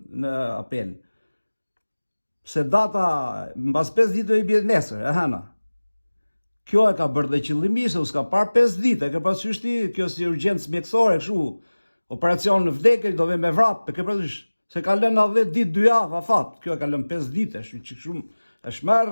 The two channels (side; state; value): both; inverted; correlation -1.00